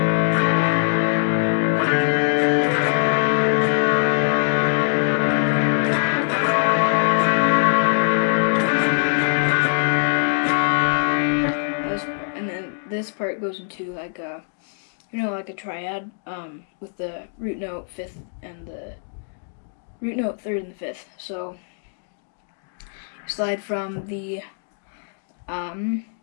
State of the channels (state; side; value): silent; right; digital silence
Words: This part goes into like a, like a triad with the root note 5th and the root note 3rd and the 5th. So slide from the 5th